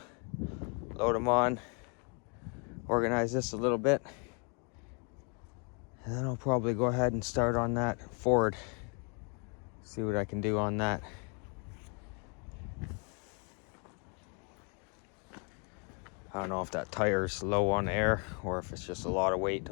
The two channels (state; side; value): quieter; right; 36.6 dB